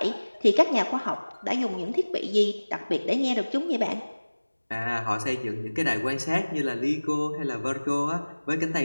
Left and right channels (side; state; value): both; inverted; correlation -1.00